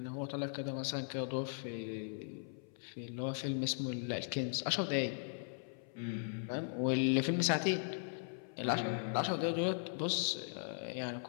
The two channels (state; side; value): silent; right; 52 dB below the other